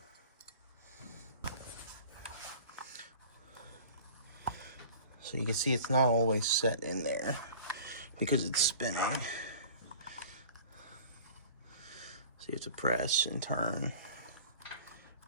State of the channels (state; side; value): inverted; both; correlation -0.44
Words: So you can see it's not always set in there because it's spinning. So you have to press and turn